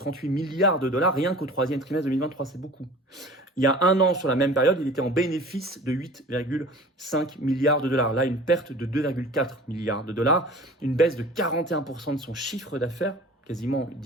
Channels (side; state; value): both; normal; correlation 0.43